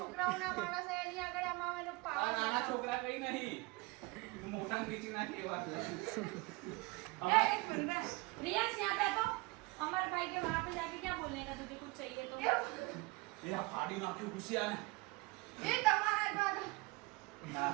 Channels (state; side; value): quieter; left; 24.5 dB